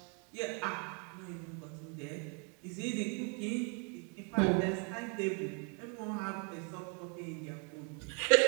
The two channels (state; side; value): quieter; left; 37.3 dB